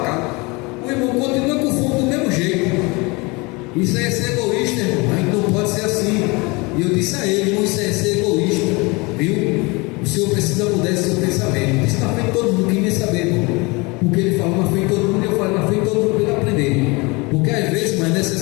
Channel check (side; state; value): right; quieter; 26.4 dB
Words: casa. O irmão continua com fome do mesmo jeito. Isso aí é ser egoísta, irmão. A gente não pode ser assim. E eu disse a ele: irmão, isso aí é ser egoísta, viu? Senhor precisa mudar esse seu pensamento. Isso na frente de todo mundo, quem nem saber, irmão. Porque ele falou na frente de todo mundo, e eu falei na frente de todo mundo para ele aprender. Porque às vezes, mas é